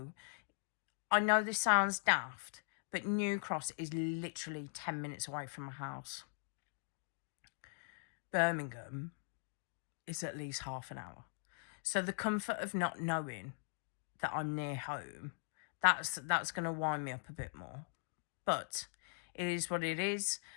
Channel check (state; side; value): silent; right; digital silence